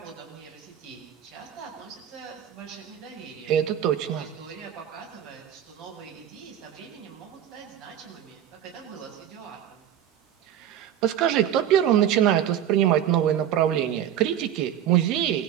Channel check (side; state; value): left; quieter; 10.4 dB